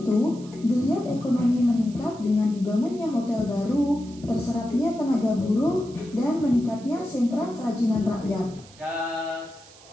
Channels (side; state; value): right; noise; hiss, 23 dB below the sound